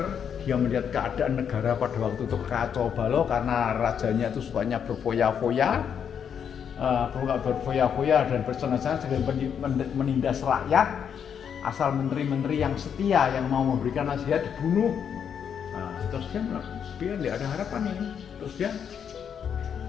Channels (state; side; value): quieter; right; 7.8 dB